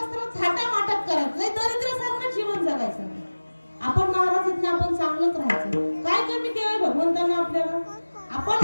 थाटामाटात करायचं नाही, दरिद्रासारखं जीवन जगायचं नाही. आपण महाराज आहेत ना, आपण चांगलंच राहायचं. काय कमी केलंय भगवंतांना आपल्याला?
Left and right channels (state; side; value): inverted; both; correlation -1.00